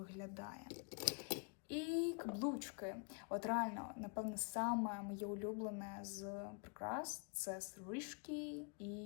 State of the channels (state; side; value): quieter; right; 37.7 dB